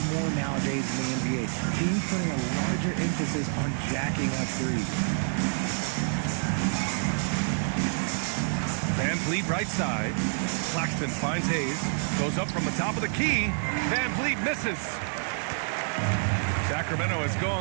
more nowadays in the NBA. Teams putting a larger emphasis on jacking up threes. Van Vliet right side. Claxton finds Hayes. Goes up from the top of the key. Van Vliet misses. Sacramento has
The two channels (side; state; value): left; silent; 59 dB below the other